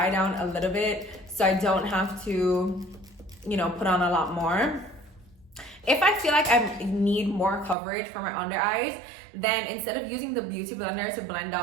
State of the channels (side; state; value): left; drops out; at 7.8 s